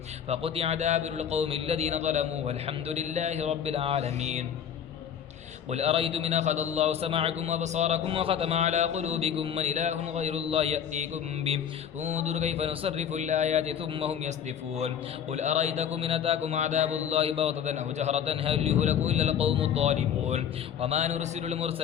فقطع دابر القوم الذين ظلموا والحمد لله رب العالمين قل أرأيتم إن أخذ الله سمعكم وبصاركم وختم على قلوبكم من إله غير الله يأتيكم به انظر كيف نصرف الآيات ثم هم يصدفون قل أرأيتكم إن أتاكم عذاب الله بغتة أو جهرة هل يهلك إلا القوم الظالمون وما نرسل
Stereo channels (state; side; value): quieter; right; 8.6 dB